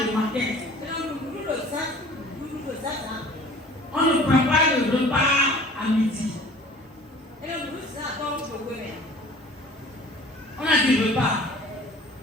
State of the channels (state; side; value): normal; both; correlation 0.47